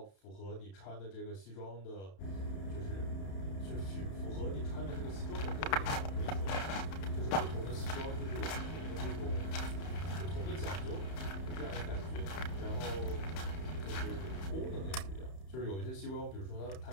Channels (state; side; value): late; right; 31 ms